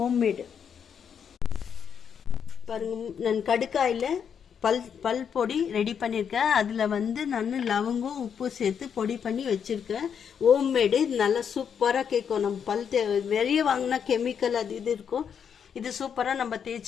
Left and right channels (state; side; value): quieter; right; 7.5 dB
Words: பாருங்க. நான் கடுக்காயில் பல் பொடி ரெடி பண்ணியிருக்கேன். அதில் நான் லவங்கம் உப்பு சேர்த்து பொடி பண்ணி வச்சுருக்கேன். ஹோம்மேடு. இது நல்லா சூப்பராக கேட்கும். நம்ம வெளியே வாங்கினா கெமிக்கல் அது இது இருக்கும். இது சூப்பராக நம்ம